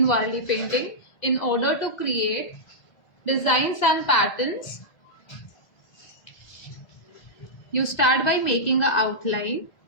Warli painting. In order to create designs and patterns, you start by making an outline.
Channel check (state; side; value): late; right; 2.0 ms